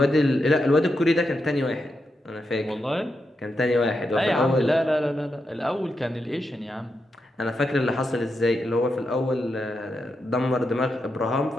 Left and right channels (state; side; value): normal; both; correlation 0.85